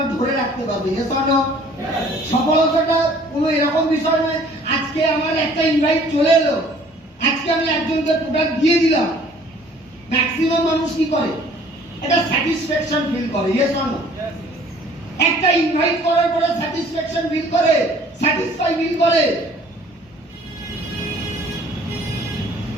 ধরে রাখতে পারবে। Yes or no? সফলতাটা কোনো এরকম বিষয় নয় আজকে আমার একটা ইনভাইট চলে এলো, আজকে আমি একজনকে প্রোডাক্ট দিয়ে দিলাম। ম্যাক্সিমাম মানুষ কি করে? এটা স্যাটিসফ্যাকশন ফিল করে। Yes or no? একটা ইনভাইট করার পরে স্যাটিসফ্যাকশন ফিল করে, স্যাটিসফাই ফিল করে।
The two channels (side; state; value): both; normal; correlation 0.54